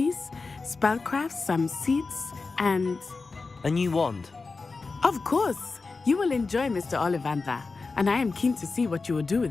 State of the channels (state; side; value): quieter; right; 4.1 dB